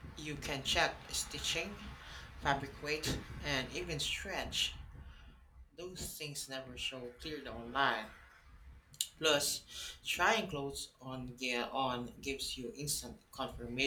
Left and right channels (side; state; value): both; identical; correlation 1.00